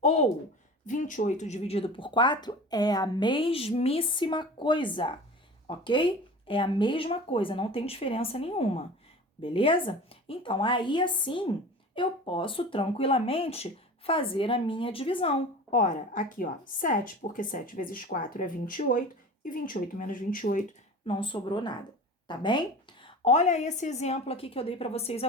ou 28 dividido por 4 é a mesmíssima coisa, ok? É a mesma coisa, não tem diferença nenhuma, beleza? Então, aí assim, eu posso tranquilamente fazer a minha divisão. Ora, aqui, ó, 7, porque 7 vezes 4 é 28, e 28 menos 28 não sobrou nada, tá bem? Olha esse exemplo aqui que eu dei para vocês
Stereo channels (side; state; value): both; normal; correlation 0.37